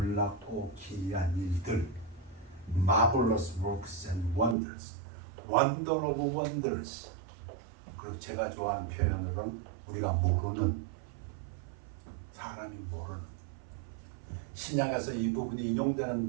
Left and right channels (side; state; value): left; drops out; at 4.5 s